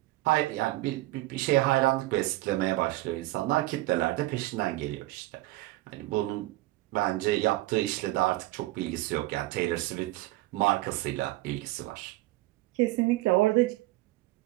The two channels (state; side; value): quieter; left; 18.7 dB